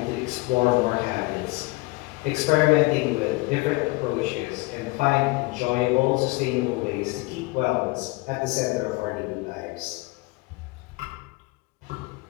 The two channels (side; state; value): right; quieter; 24.3 dB